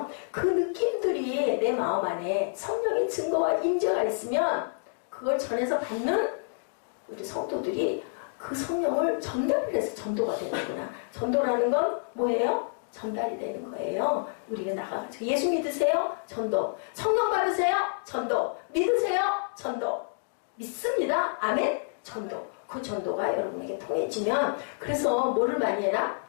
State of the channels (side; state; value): right; silent; digital silence